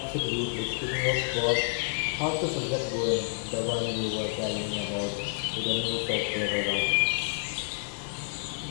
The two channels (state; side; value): silent; right; digital silence